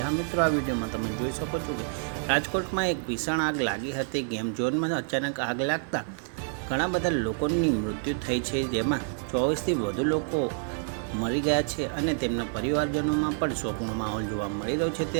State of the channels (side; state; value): left; silent; 59 dB below the other